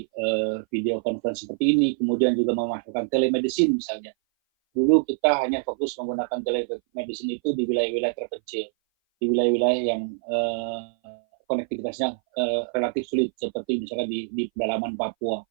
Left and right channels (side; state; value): left; silent; 58 dB below the other